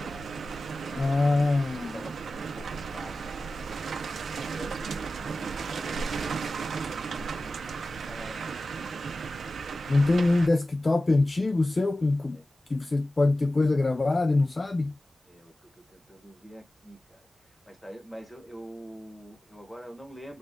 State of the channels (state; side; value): normal; both; correlation 0.95